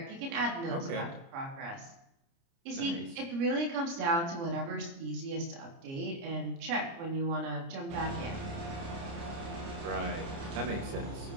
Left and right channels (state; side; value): late; left; 29 ms